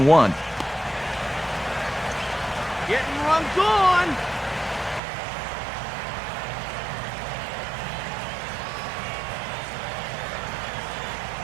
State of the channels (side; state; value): left; drops out; at 5.0 s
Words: Getting runs on.